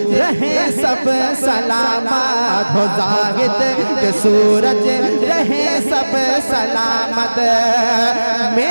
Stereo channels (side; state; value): both; inverted; correlation -1.00